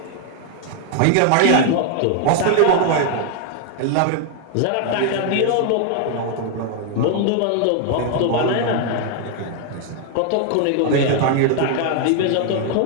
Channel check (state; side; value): different; both; correlation 0.00